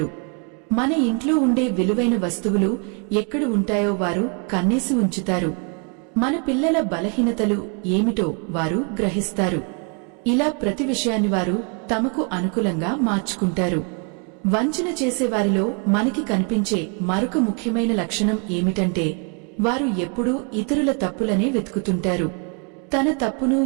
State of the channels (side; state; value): left; quieter; 36.8 dB